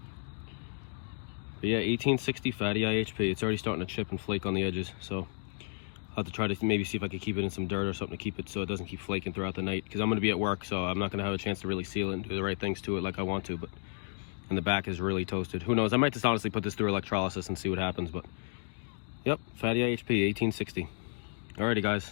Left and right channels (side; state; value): right; silent; 56 dB below the other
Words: But yeah, 1860 fatty IHP. It's already starting to chip and flake on the edges. So I'll have to try to maybe see if I could keep it in some dirt or something to keep it so it doesn't keep flaking throughout the night. Because I'm going to be at work, so I'm not going to have a chance to really seal it and do the right things to it like I want to. But and the back is really toasted. Who knows? I might just honestly put this through electrolysis and see what happens. But yep, fatty IHP, 1860. Alrighty,